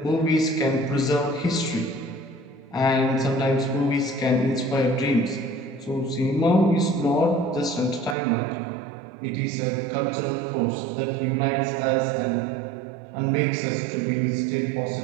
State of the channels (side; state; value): left; drops out; at 8.2 s